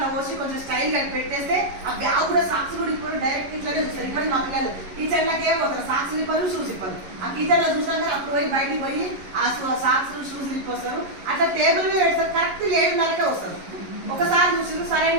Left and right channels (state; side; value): late; left; 11 ms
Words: పోసి కొంచెం స్టైల్ గా పెట్టేస్తే ఆ బ్యాగ్ కూడా సాక్స్ కూడా ఇప్పుడు డైరెక్ట్ ఇట్లానే చూస్తారు. ఇప్పుడు మా పిల్లలు టీచర్లకి ఏం పోతారు, సాక్స్ ఇప్పరు, షూస్ ఇప్పరు. ఆ టీచర్లో చూసినాక అప్పుడు పోయి బయటికి పోయి ఆ సాక్స్ షూస్ ఇప్పొస్తారు. అట్లా టేబుల్ మీద పెడతారు, కరెక్ట్ 7:30కే వస్తారు. ఒకసారి చూసిరు సరే